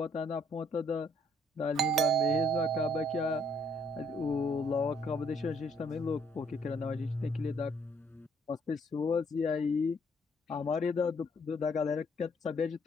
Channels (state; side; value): normal; both; correlation 0.66